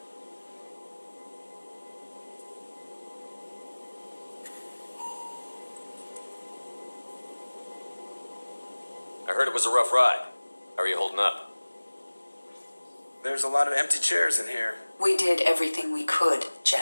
I heard it was a rough ride. How are you holding up? There's a lot of empty chairs in here. We did everything we could,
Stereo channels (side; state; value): both; inverted; correlation -1.00